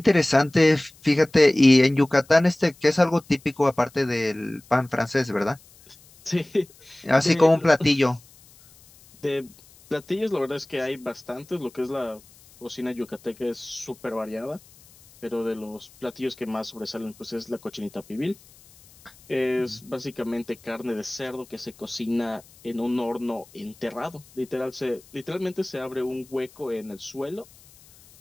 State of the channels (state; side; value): noise; left; hiss, 26 dB below the sound